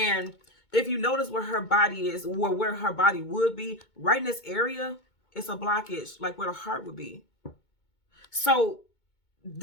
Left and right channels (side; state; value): right; late; 2.2 ms